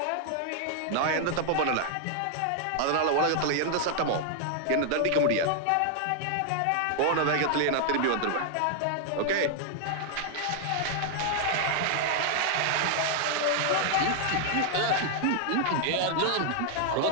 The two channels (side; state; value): both; different; correlation 0.00